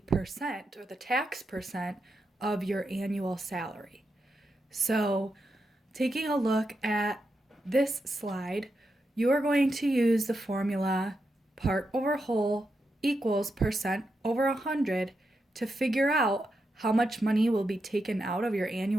percent or the tax percent of your annual salary. So taking a look at this slide, you are going to use the formula part over whole equals percent over 100 to figure out how much money will be taken out of your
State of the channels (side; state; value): both; normal; correlation 0.86